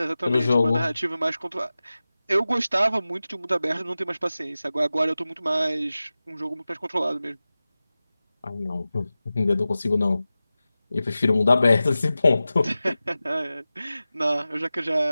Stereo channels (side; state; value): both; inverted; correlation -0.96